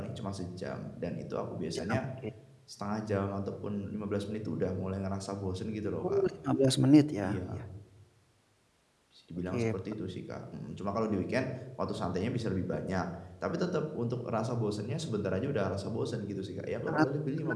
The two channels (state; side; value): identical; both; correlation 1.00